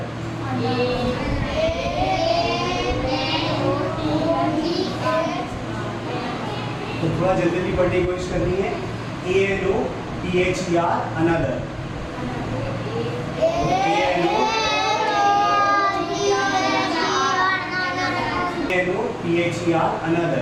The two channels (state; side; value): identical; both; correlation 1.00